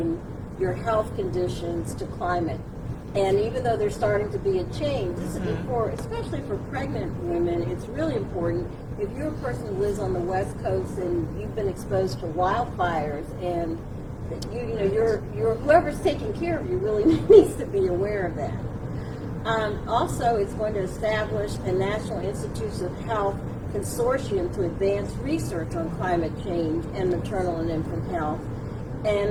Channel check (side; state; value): both; identical; correlation 1.00